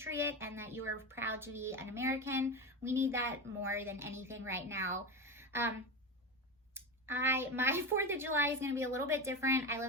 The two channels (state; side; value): normal; both; correlation 0.19